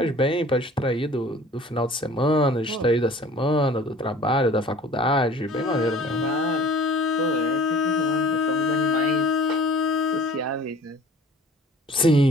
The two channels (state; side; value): normal; both; correlation 0.48